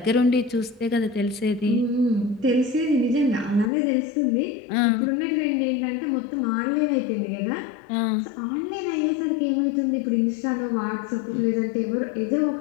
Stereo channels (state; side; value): drops out; right; at 3.7 s